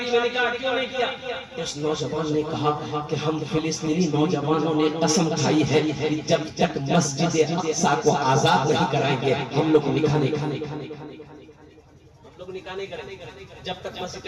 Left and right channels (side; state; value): both; identical; correlation 1.00